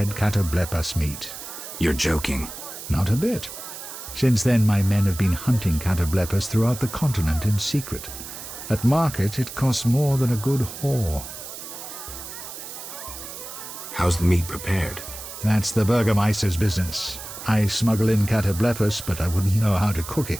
catoblepas meat. You're joking. Not a bit. Since then, my men have been hunting catoblepas throughout the continent in secret. At market, it costs more than a good whore. How's the meat prepared? That's the Burgermeister's business. I smuggle in catoblepas, but I wouldn't know how to cook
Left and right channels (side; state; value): right; noise; hiss, 11 dB below the sound